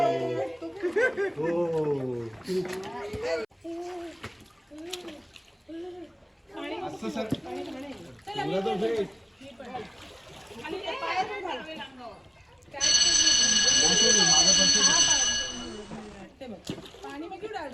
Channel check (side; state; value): both; identical; correlation 1.00